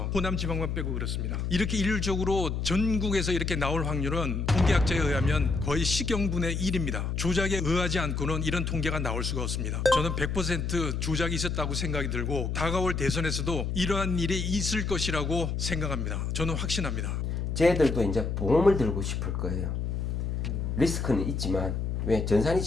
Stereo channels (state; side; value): noise; left; hum, 1 dB below the sound